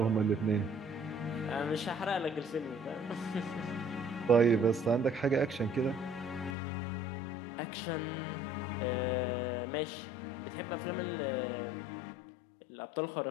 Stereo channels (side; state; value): right; drops out; at 6.6 s